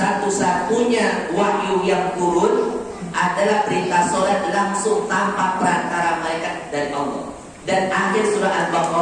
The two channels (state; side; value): identical; both; correlation 1.00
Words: wahyu yang turun adalah perintah sholat langsung tanpa perantara malaikat dari Allah. Dan akhir surah